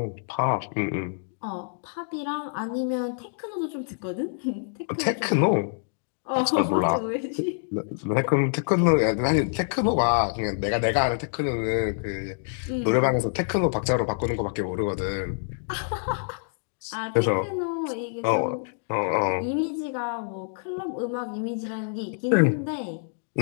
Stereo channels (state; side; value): silent; right; digital silence